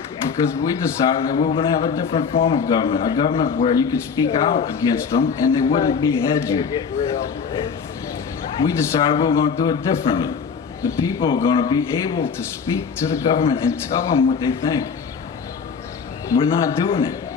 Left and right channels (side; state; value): right; quieter; 6.0 dB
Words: because we decided that we were going to have a different form of government, a government where you could speak out against them and they wouldn't behead you. We decided we were going to do it differently. The people are going to be able to speak to the government and tell them what they think. We're not doing